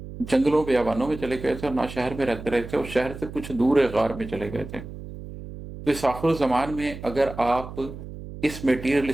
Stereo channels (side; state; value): right; noise; hum, 12 dB below the sound